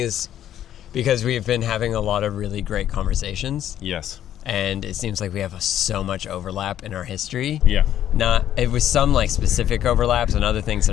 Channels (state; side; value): quieter; right; 11.2 dB